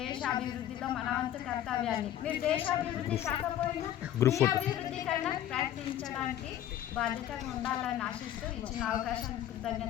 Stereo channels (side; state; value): right; quieter; 11.6 dB